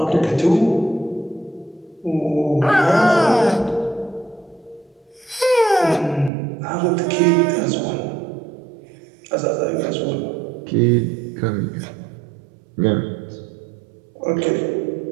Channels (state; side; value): drops out; left; at 6.3 s